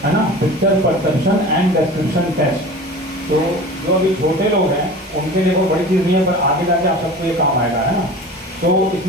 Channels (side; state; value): both; normal; correlation 0.37